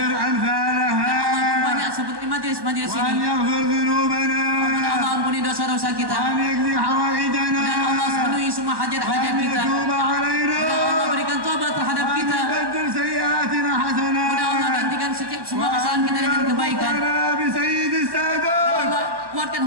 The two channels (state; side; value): late; left; 1.2 ms